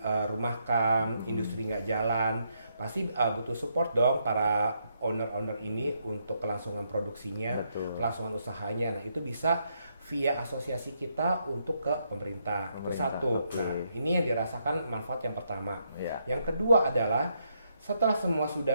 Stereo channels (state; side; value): inverted; both; correlation -0.77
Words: industri nggak jalan, pasti butuh support dong para owner-owner ini untuk kelangsungan produksinya, Betul. kelangsungan usahanya. Nah itu bisa via asosiasi kita untuk ke pemerintah. Itu satu. Oke. Nah ini yang dirasakan manfaat yang pertama. Ya. Yang kedua adalah setelah semua